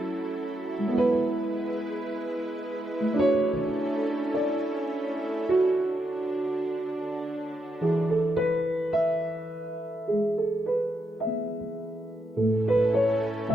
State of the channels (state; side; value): normal; both; correlation 0.82